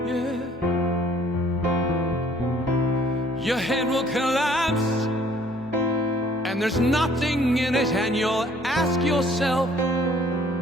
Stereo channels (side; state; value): both; normal; correlation 0.58